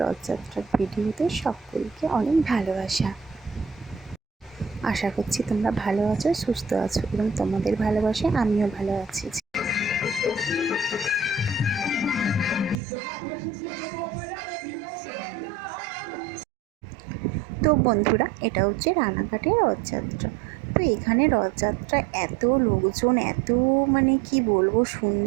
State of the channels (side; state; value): left; drops out; at 12.8 s